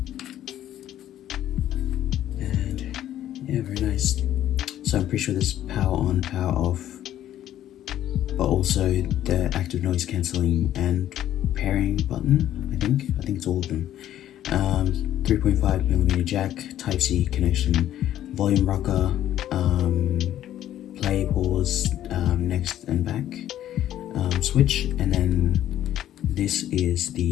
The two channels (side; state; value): right; quieter; 12.0 dB